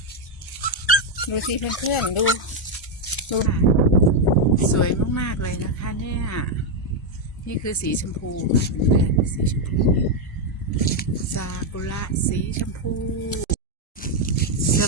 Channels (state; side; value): normal; both; correlation 0.02